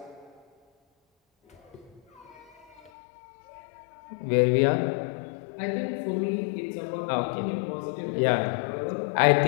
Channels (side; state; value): right; drops out; at 2.9 s